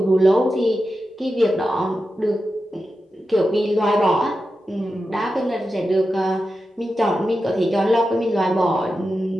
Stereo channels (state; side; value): normal; both; correlation 0.91